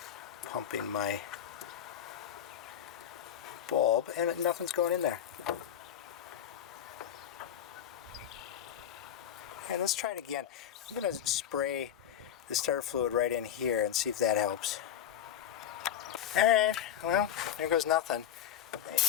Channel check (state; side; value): quieter; right; 10.2 dB